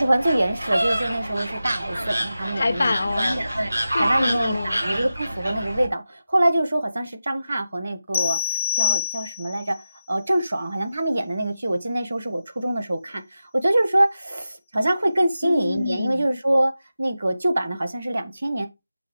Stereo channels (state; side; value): inverted; both; correlation -0.92